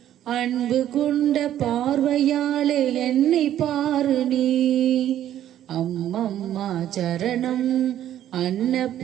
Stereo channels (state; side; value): quieter; left; 11.6 dB